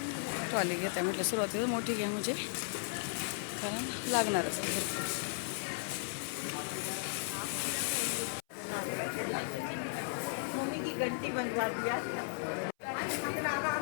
ट्रॉली घेत आहे म्हटलं, सुरुवातीला मोठी घ्या म्हणजे, कारण लागणारच आहे भरपूर. घंटी बनवा दिया.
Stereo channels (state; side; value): silent; right; 54 dB below the other